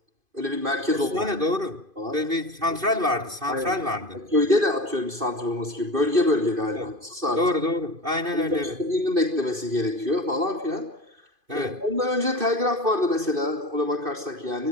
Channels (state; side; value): late; left; 2.5 ms